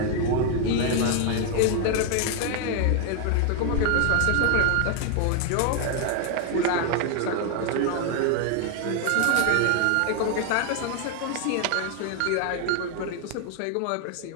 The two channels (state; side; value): different; both; correlation 0.00